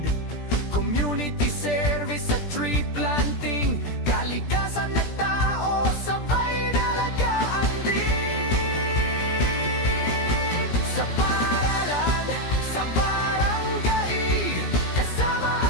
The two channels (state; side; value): late; right; 17 ms